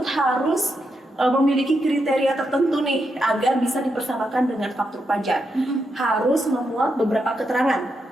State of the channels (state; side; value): normal; both; correlation 0.83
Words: harus memiliki kriteria tertentu nih agar bisa dipersamakan dengan faktur pajak. Harus memuat beberapa